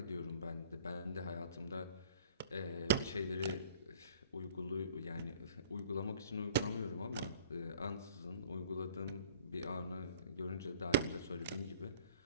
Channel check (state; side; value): inverted; both; correlation -0.50